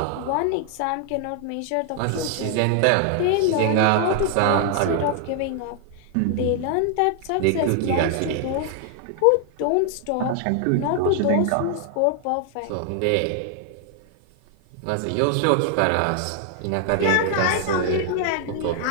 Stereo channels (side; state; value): both; different; correlation 0.00